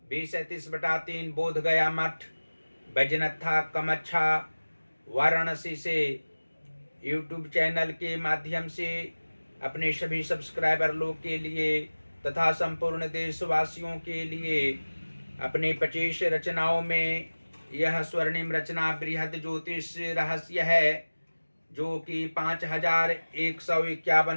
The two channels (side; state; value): both; inverted; correlation -1.00